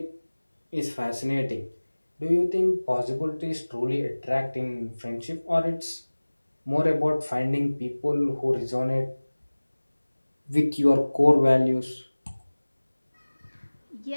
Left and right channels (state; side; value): inverted; both; correlation -1.00